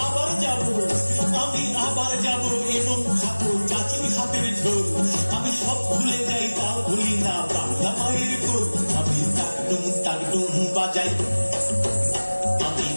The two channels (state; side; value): inverted; both; correlation -1.00